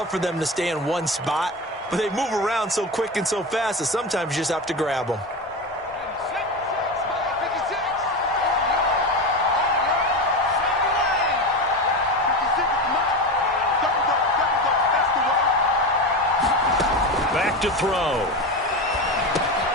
for them to stay in one spot. But they move around so quick and so fast that sometimes you just have to grab them. Back to throw.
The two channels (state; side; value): normal; both; correlation 0.21